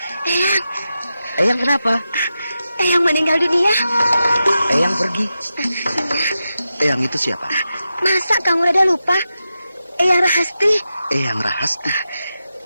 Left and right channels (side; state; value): both; inverted; correlation -0.90